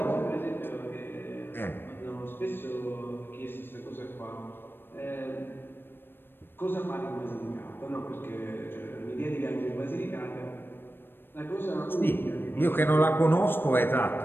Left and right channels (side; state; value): right; late; 0.099 ms